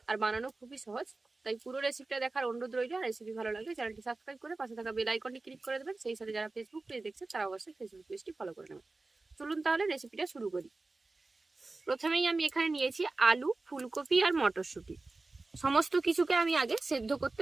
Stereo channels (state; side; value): quieter; left; 3.4 dB